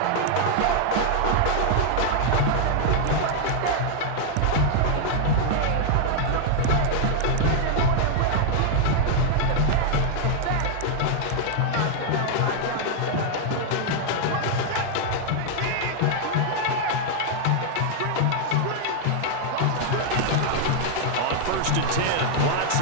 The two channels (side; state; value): both; different; correlation 0.00